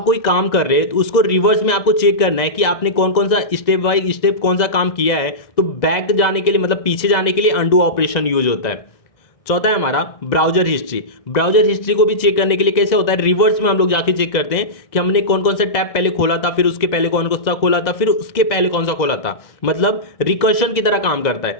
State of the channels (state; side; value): late; right; 2.0 ms